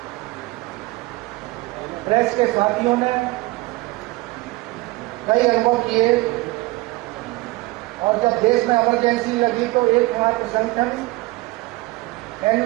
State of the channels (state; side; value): quieter; left; 21.5 dB